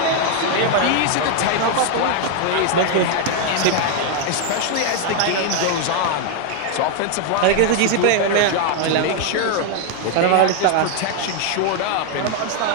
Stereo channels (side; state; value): both; different; correlation 0.00